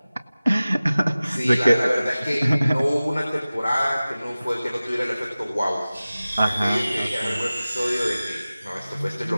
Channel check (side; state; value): both; inverted; correlation -0.97